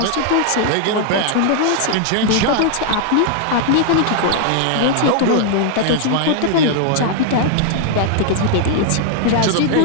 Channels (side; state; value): both; different; correlation 0.00